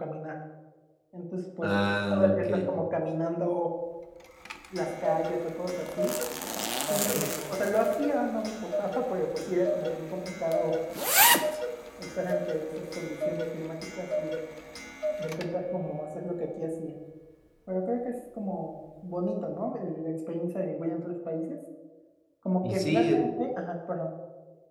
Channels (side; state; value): both; identical; correlation 1.00